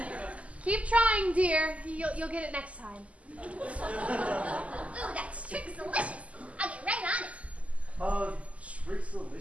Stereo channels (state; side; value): late; left; 0.066 ms